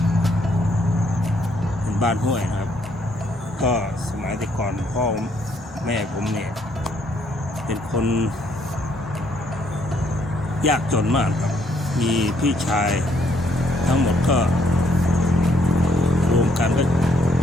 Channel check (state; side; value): normal; both; correlation 0.69